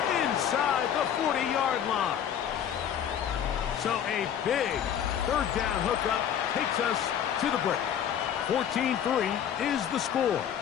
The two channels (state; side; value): quieter; right; 9.2 dB